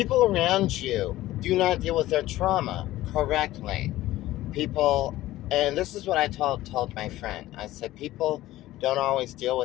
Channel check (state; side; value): quieter; right; 15.9 dB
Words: around you do not deal with their trauma correctly. People, and this is what I told my friend. I said, people don't always deal